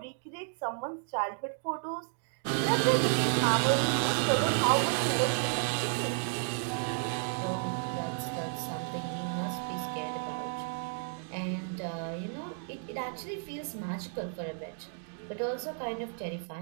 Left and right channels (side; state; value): left; silent; 56 dB below the other